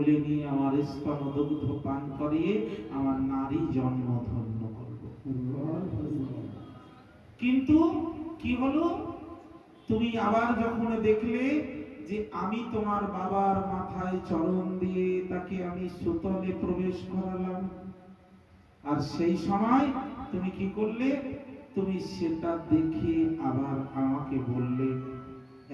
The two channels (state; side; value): identical; both; correlation 1.00